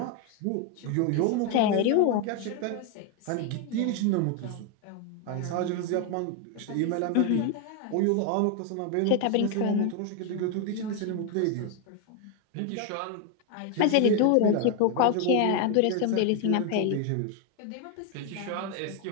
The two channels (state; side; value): different; both; correlation 0.01